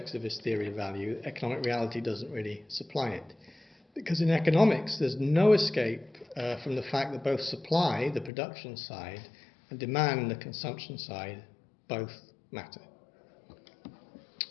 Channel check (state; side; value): drops out; right; at 8.3 s